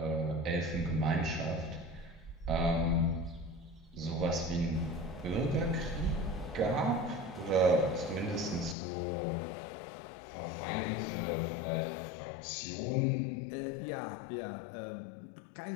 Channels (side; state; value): right; drops out; at 8.8 s